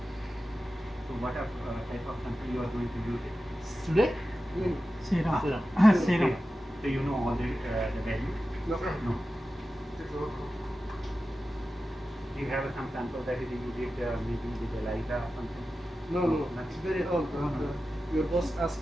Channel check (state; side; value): normal; both; correlation 0.93